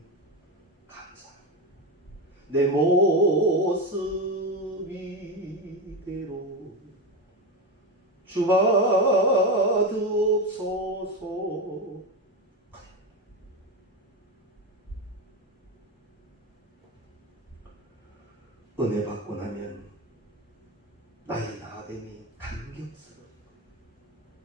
감사합니다. 내 모습 이대로 주받으옵소서. 은혜 받고 나면 나의 나됨이 감격스러워.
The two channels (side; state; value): both; normal; correlation 0.16